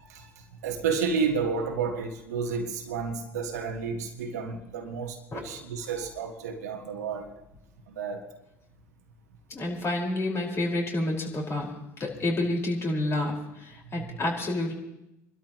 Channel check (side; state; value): both; normal; correlation 0.40